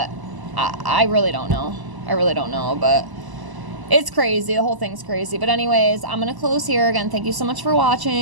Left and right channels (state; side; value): late; left; 1.0 ms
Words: I really don't know. I really don't know, but it's crazy. The whole thing's crazy. But anyways, I'm going to close here. Again, thank you so much for